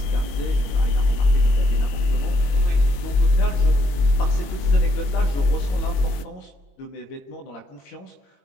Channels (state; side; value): late; right; 22 ms